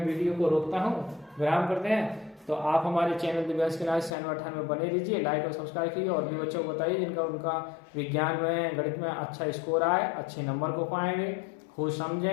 वीडियो को रोकता हूं, विराम करते हैं। तो आप हमारे चैनल दिव्यांश के नाम 98 में बने रहिए, लाइक और सब्सक्राइब कीजिए और भी बच्चों को बताइए जिनका उनका विज्ञान में गणित में अच्छा स्कोर आए, अच्छे नंबर को पाएंगे, खुद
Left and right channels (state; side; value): drops out; right; at 4.1 s